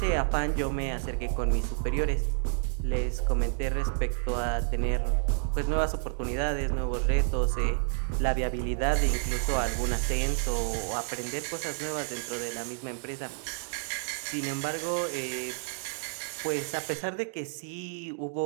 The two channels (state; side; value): silent; left; digital silence